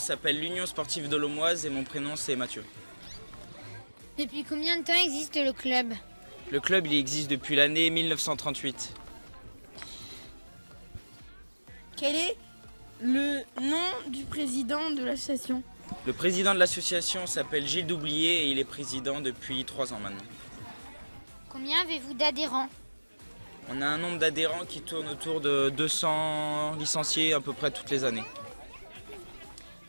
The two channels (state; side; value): inverted; both; correlation -1.00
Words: l'Union Sportive de l'Aumoise et mon prénom c'est Mathieu. Depuis combien de temps existe le club? Le club il existe depuis l'année 1938. Quel est le nom du président de l'association? Le président de l'association s'appelle Gilles Doublier et il est président depuis 3 ans maintenant. Combien avez-vous d'adhérents? On a un nombre d'adhérents qui tourne autour de 200 licenciés à peu près toutes les années.